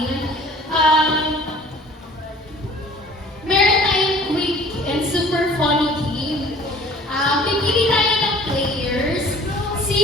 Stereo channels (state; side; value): normal; both; correlation 0.48